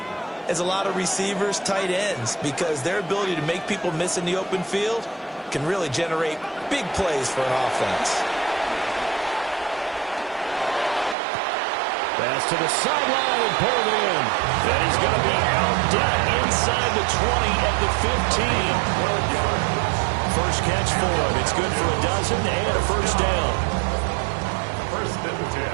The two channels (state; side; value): drops out; left; at 11.2 s